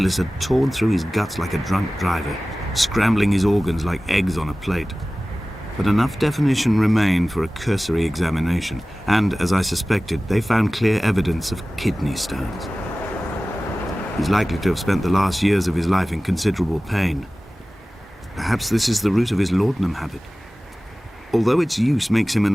had torn through his guts like a drunk driver, scrambling his organs like eggs on a plate. But enough definition remained for a cursory examination, and, as I suspected, they found clear evidence of kidney stones. He's likely to have spent the last years of his life in considerable pain. Perhaps this is the root of his laudanum habit. Although its use makes him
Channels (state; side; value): normal; both; correlation 0.97